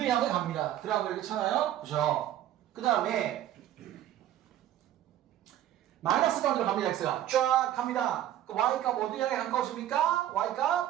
향해 갑니다. 그래갖고 이렇게 잖아요. 그죠? 그 다음에 마이너스 무한대로 갑니다. x가 쫙 갑니다. 그 y값 어디 향해 가까워집니까?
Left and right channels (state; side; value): quieter; left; 12.3 dB